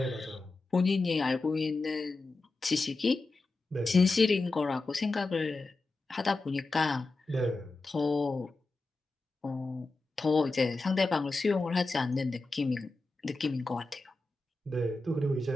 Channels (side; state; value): right; quieter; 3.3 dB